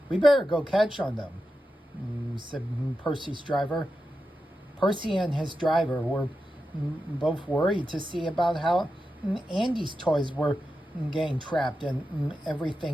We better go catch on them, said Percy's driver. Percy and his driver were both worried to see about how Andy's toys were getting trapped and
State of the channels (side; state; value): both; normal; correlation 0.90